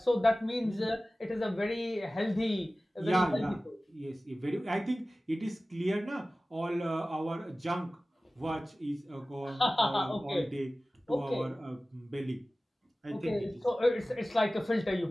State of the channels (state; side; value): normal; both; correlation 0.97